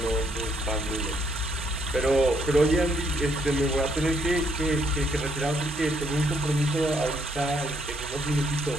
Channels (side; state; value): both; normal; correlation 0.70